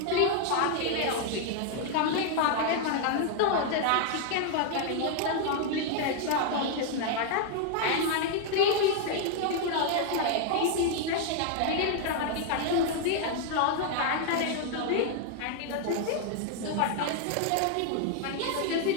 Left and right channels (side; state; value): both; different; correlation 0.00